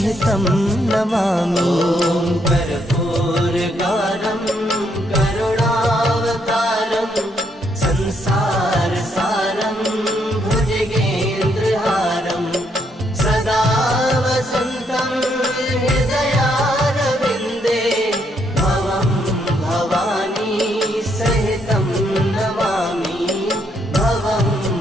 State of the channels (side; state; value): both; normal; correlation 0.74